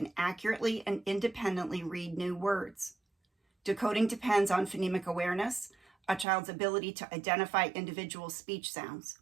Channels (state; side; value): drops out; left; at 6.2 s